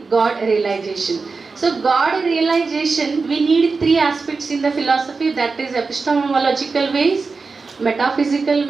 God realization. So God realization, we need three aspects in the philosophy, that is epistemological ways, metaphysical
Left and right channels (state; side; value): quieter; left; 4.4 dB